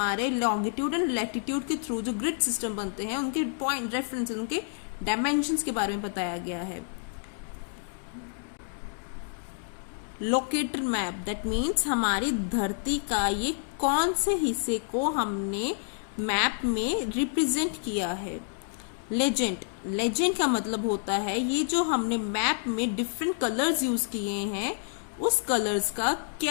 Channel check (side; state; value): right; silent; digital silence